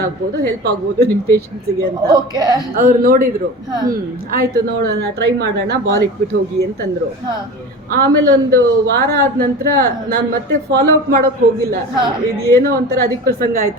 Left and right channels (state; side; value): normal; both; correlation 0.33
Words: ಆಗ್ಬೋದು, ಹೆಲ್ಪ್ ಆಗ್ಬೋದು ನಿಮ್ ಪೇಷಂಟ್ಸ್ಗೆ ಅಂತ ಅವ್ರು ನೋಡಿದ್ರು. ಆಯ್ತು ನೋಡೋಣ, ಟ್ರೈ ಮಾಡೋಣ, ಬಾಲ್ ಇಟ್ಬಿಟ್ಟು ಹೋಗಿ ಅಂತಂದ್ರು. ಆಮೇಲೆ ಒಂದು ವಾರ ಆದ ನಂತರ ನಾನ್ ಮತ್ತೆ ಫಾಲೋ ಅಪ್ ಮಾಡೋಕ್ ಹೋಗಿಲ್ಲ, ಇದು ಏನೋ ಒಂಥರ ಅಧಿಕ ಪ್ರಸಂಗ